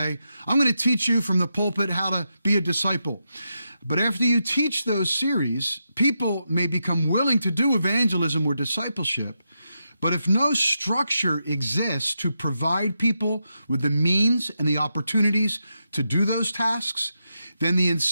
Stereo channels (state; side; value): inverted; both; correlation -0.85